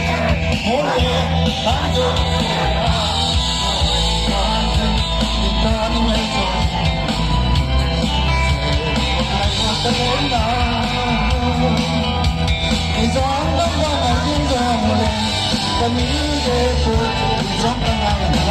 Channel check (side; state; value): both; identical; correlation 1.00